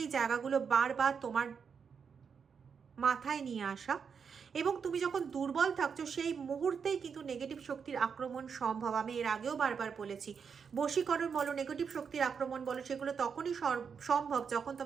জায়গাগুলো বারবার তোমার মাথায় নিয়ে আসা, এবং তুমি যখন দুর্বল থাকছো সেই মুহূর্তেই কিন্তু নেগেটিভ শক্তির আক্রমণ সম্ভব। আমি এর আগেও বারবার বলেছি, বশীকরণ বলো, নেগেটিভ শক্তির আক্রমণ বলো, সেগুলো তখনই সম্ভব যখন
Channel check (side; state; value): left; quieter; 6.4 dB